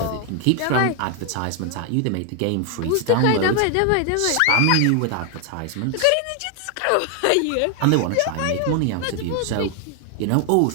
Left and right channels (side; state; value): both; different; correlation 0.00